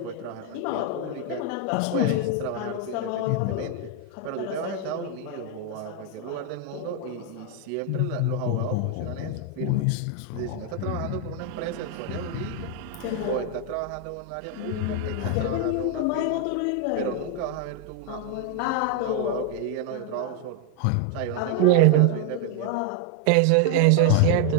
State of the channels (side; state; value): both; different; correlation 0.00